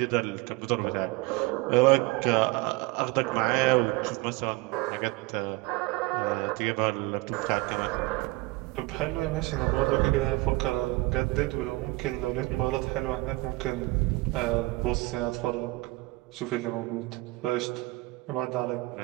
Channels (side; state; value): left; quieter; 22.4 dB